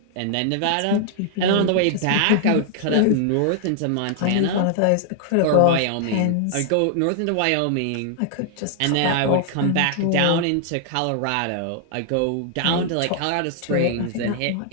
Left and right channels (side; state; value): both; different; correlation 0.00